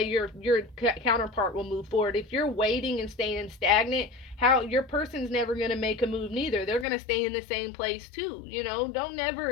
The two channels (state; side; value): drops out; right; at 6.9 s